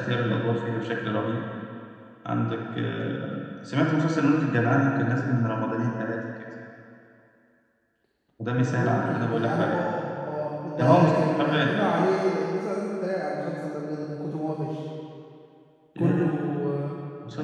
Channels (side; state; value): both; identical; correlation 1.00